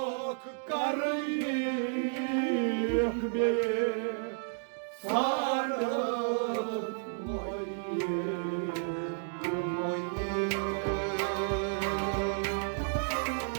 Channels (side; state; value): left; silent; digital silence